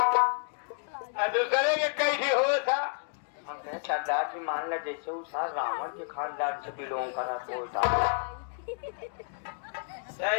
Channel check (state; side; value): silent; right; 58 dB below the other